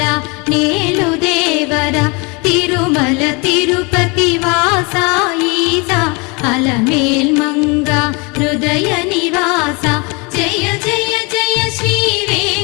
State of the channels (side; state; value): right; quieter; 29.6 dB